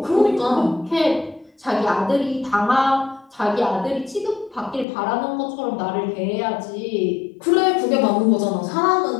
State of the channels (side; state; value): right; drops out; at 4.9 s